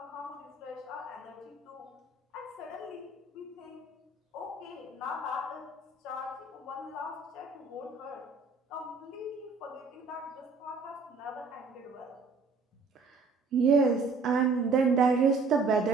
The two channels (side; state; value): left; quieter; 4.1 dB